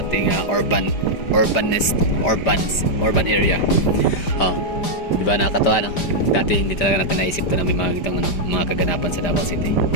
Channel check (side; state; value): right; late; 5.0 ms